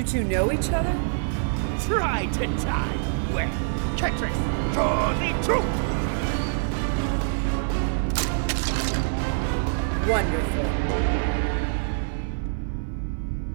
two know each other? Try to die well. Ketrix, draw the truth! Wonderful.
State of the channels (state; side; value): silent; left; 55 dB below the other